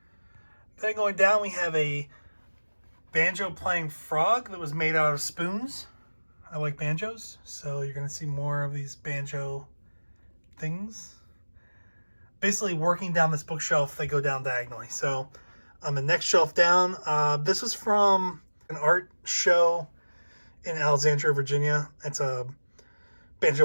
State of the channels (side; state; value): both; inverted; correlation -1.00